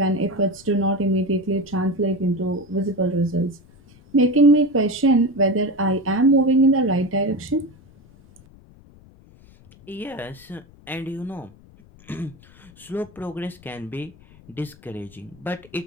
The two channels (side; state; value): left; noise; rumble, 25 dB below the sound